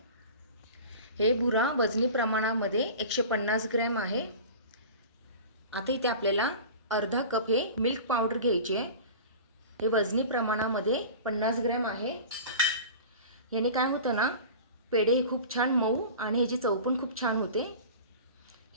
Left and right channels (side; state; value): both; inverted; correlation -0.36